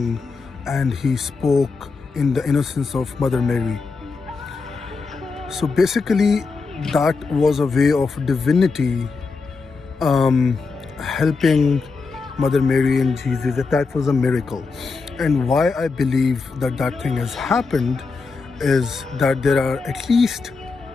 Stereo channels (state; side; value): quieter; right; 4.4 dB